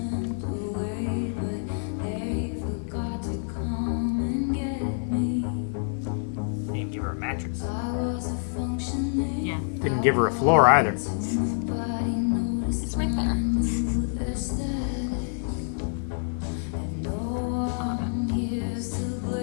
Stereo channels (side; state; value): right; silent; digital silence